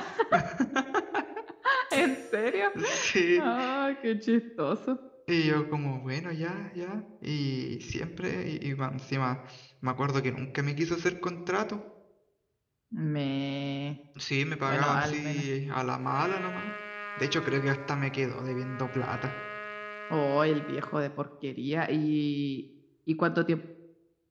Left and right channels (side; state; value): both; identical; correlation 1.00